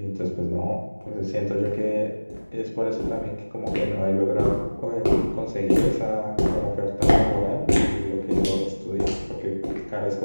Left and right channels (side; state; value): both; inverted; correlation -1.00